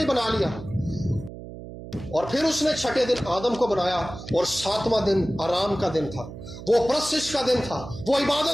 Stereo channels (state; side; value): noise; right; hum, 13 dB below the sound